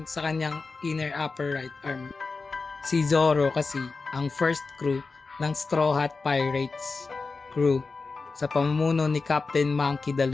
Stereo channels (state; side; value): quieter; right; 4.2 dB